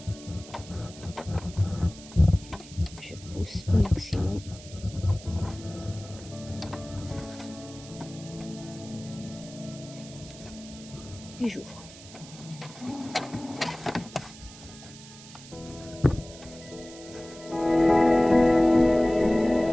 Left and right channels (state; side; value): noise; right; hiss, 18 dB below the sound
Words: Je pousse au maximum. Et j'ouvre.